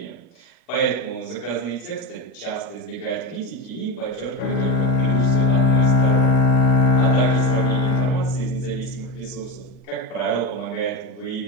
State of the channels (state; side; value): late; right; 40 ms